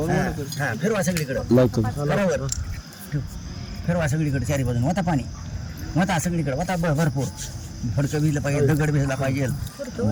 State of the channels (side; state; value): both; identical; correlation 1.00